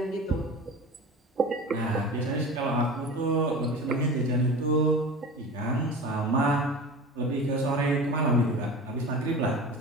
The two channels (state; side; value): normal; both; correlation 0.34